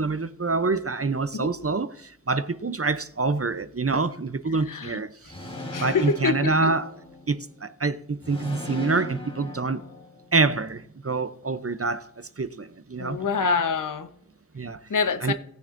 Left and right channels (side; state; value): both; normal; correlation 0.11